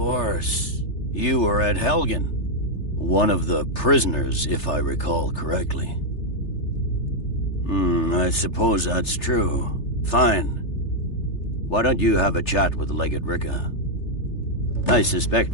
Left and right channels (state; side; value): late; right; 3.3 ms